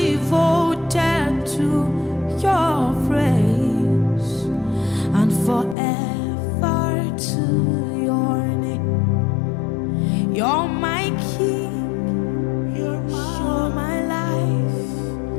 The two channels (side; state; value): right; drops out; at 5.8 s